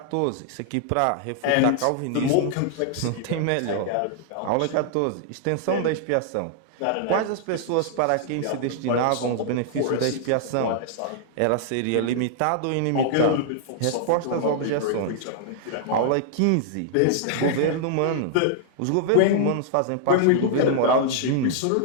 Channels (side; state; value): both; different; correlation -0.01